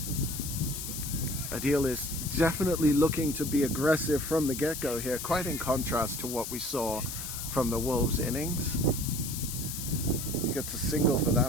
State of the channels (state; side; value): noise; left; hiss, 6 dB below the sound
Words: Adil is definitely looking to be aggressive from the get-go here, quite in contrast to what we saw from the Wolves innings. He gets a single for